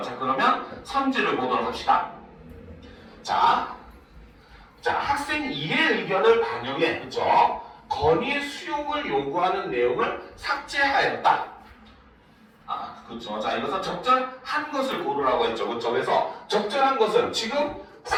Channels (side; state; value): both; identical; correlation 1.00